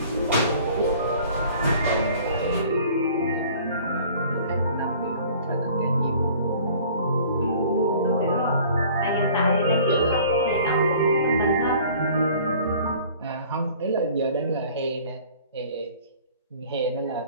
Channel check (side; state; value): both; inverted; correlation -0.50